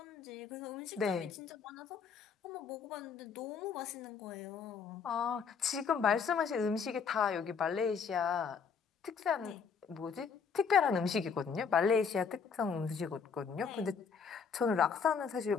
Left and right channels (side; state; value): right; quieter; 6.1 dB